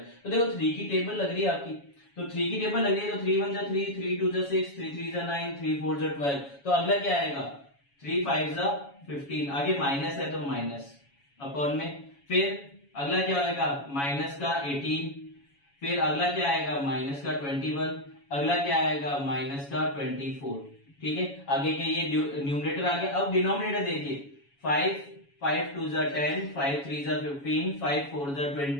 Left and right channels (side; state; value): right; late; 7.1 ms